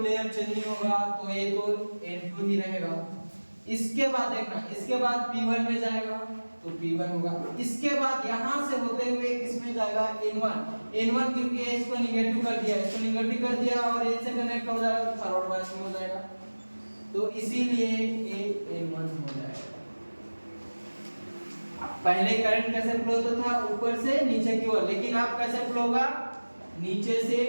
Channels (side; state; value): both; inverted; correlation -1.00